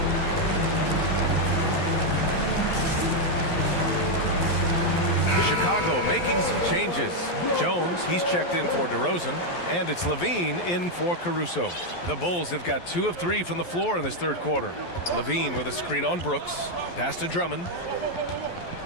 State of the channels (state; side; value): late; right; 11 ms